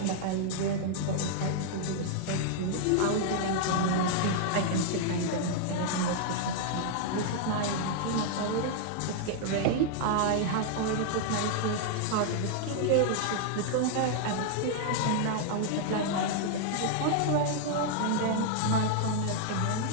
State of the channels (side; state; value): both; different; correlation -0.01